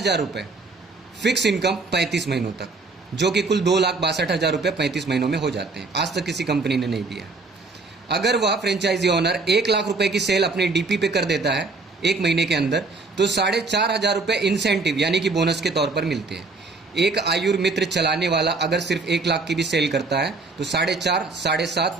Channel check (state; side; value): quieter; left; 3.7 dB